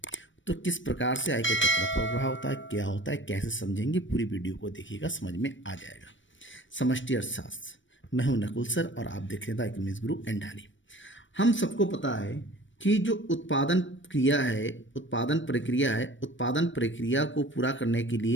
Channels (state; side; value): late; right; 0.56 ms